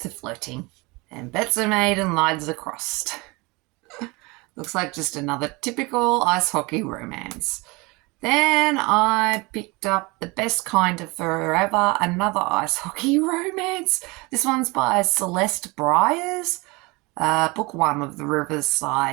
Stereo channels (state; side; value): quieter; left; 25.5 dB